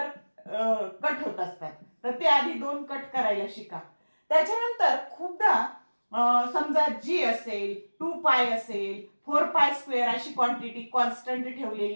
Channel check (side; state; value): both; inverted; correlation -1.00